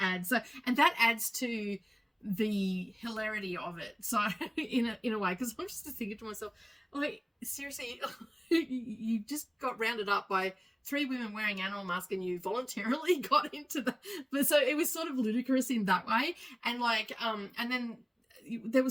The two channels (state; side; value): identical; both; correlation 1.00